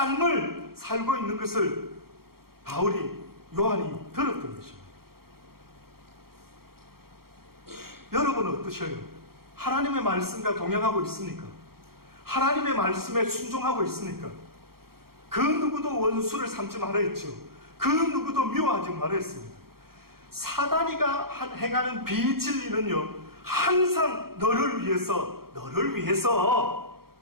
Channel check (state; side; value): late; left; 0.94 ms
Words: 살고 있는 것을 요한이 들었던 것입니다. 여러분은 어떠셔요? 하나님의 말씀과 동행하고 있습니까? 하나님의 말씀에 순종하고 있습니까? 그 누구도 원수를 삼지 말아 했죠. 그 누구도 미워하지 말아 했습니다. 사단이가 행하는 비진리는요, 항상 너를 위해서